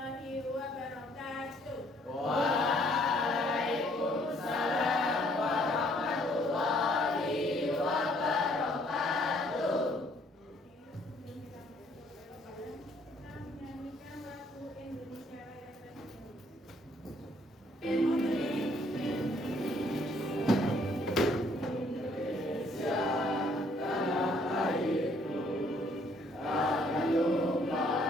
wabarakatuh. Waalaikumsalam warahmatullahi wabarakatuh. Kita menyanyikan lagu Indonesia Raya Tradisional.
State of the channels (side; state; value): both; normal; correlation 0.64